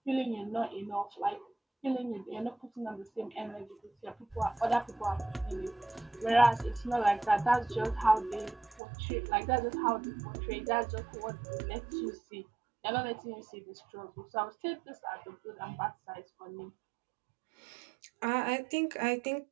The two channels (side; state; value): left; drops out; at 8.8 s